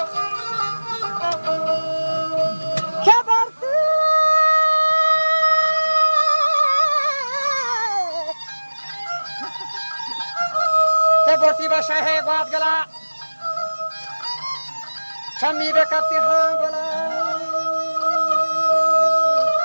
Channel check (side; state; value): both; inverted; correlation -1.00